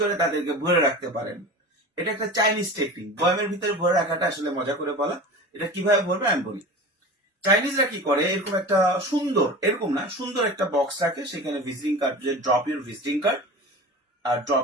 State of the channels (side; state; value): both; normal; correlation 0.33